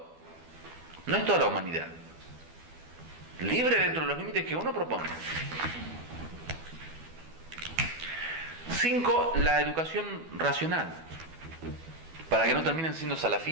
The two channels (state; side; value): late; left; 12 ms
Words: No es toda la humanidad. Libre dentro de los límites que uno propone. 5. La educación racional, para que no terminen siendo